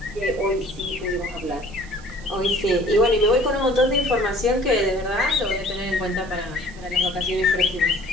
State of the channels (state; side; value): noise; right; hiss, 23 dB below the sound